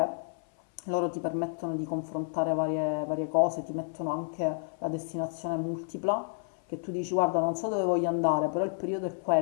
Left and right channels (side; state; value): right; silent; 58 dB below the other